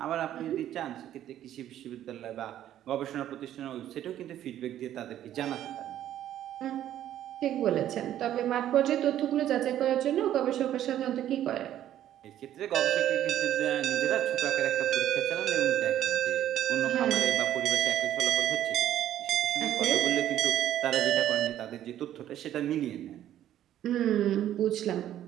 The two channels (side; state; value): left; quieter; 11.8 dB